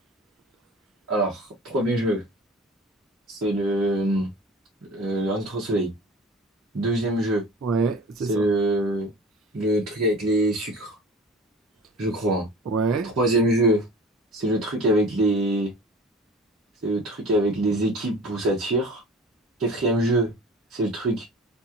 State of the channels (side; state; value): both; normal; correlation 0.41